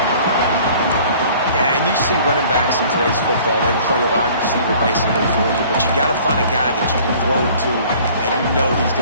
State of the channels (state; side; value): inverted; both; correlation -0.51